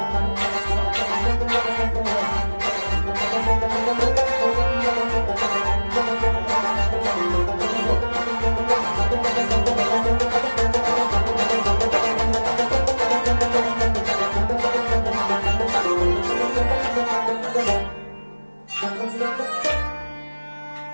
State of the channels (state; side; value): inverted; both; correlation -1.00